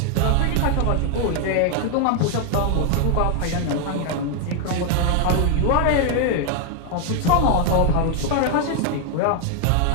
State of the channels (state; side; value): different; both; correlation 0.00